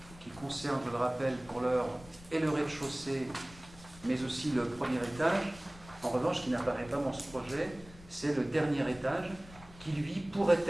qui concerne, je le rappelle, pour l'heure, et le rez-de-chaussée, mais aussi le premier étage. En revanche, ce qui n'apparaît pas dans ce projet, c'est le dernier étage, qui lui pourrait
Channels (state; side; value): noise; left; rumble, 20 dB below the sound